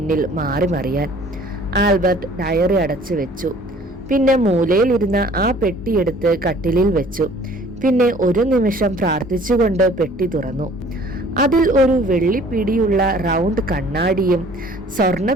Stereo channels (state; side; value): normal; both; correlation 0.53